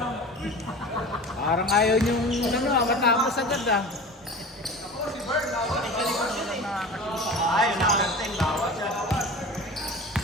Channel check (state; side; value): normal; both; correlation 0.35